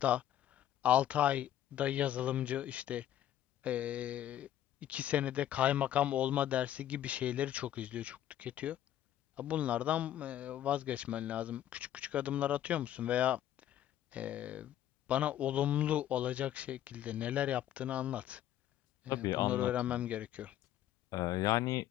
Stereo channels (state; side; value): quieter; right; 11.9 dB